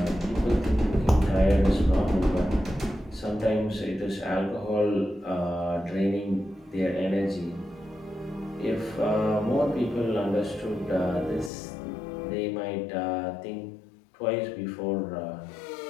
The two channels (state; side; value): drops out; right; at 11.5 s